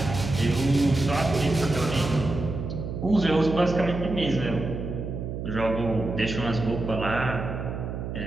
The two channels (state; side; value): noise; right; hum, 6 dB below the sound